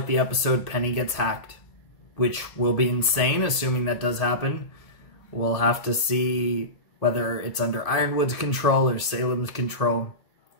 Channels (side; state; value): right; late; 1.8 ms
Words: the episode Penny gets hacked, which will be insane, assuming that does happen. We'll have to see whether it's under Ironwood's control or Salem's control.